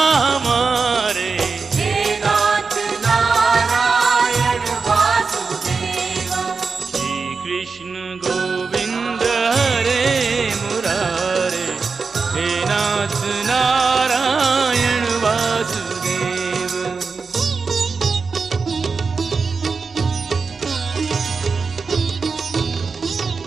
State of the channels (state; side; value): quieter; left; 4.6 dB